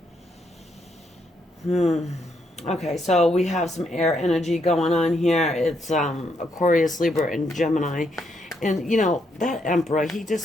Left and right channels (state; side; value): normal; both; correlation 0.76